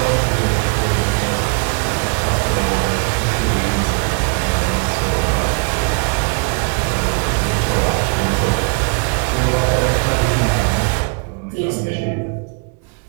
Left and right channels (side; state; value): left; quieter; 36.3 dB